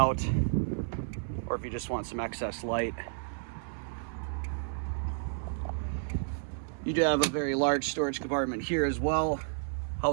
or if you just want some excess light. You do have a very large storage compartment here as well,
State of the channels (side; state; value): left; silent; 57 dB below the other